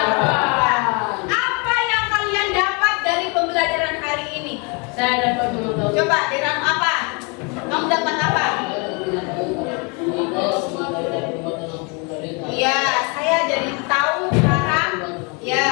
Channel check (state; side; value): quieter; right; 32.3 dB